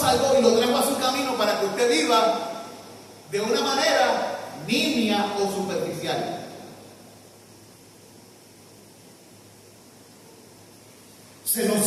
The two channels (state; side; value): identical; both; correlation 1.00